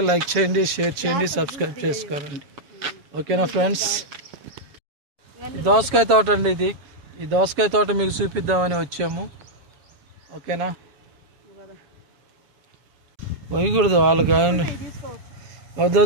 లైక్ చేయండి, షేర్ చేయండి, సబ్స్క్రైబ్ చేసుకోరండి. ఓకేనా ఫ్రెండ్స్? దోసకాయ తోట అండి ఇది. ఈ దోసకాయ తోట మీకు చూపిద్దామని వచ్చాము. ఓకేనా? పోయకూడదు వాళ్ళకి,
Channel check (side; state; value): left; late; 7.2 ms